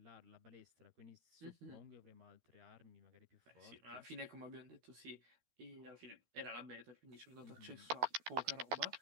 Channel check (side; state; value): left; late; 12 ms